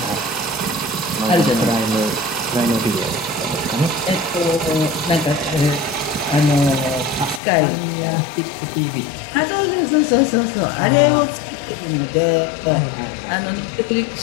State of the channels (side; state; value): right; drops out; at 7.4 s